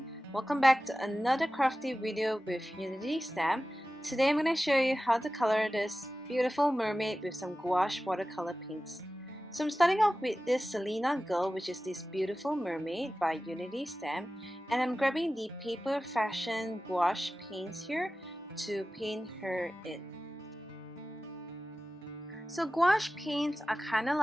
Welcome back to another crafty video with Unity Stamp. Today I'm going to show you how to color this beautiful mermaid with some gouache watercolor paints. So I'm starting off with this Salina girl, which is this beautiful mermaid by Unity Stamp, and I'm grabbing the paper Fashion Gouache paints here to paint her in. So gouache paints are kind of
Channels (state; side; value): normal; both; correlation 0.95